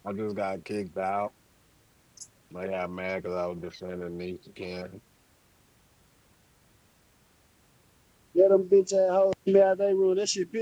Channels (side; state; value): both; identical; correlation 1.00